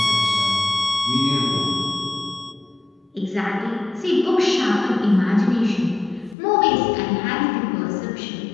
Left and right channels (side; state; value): right; drops out; at 6.4 s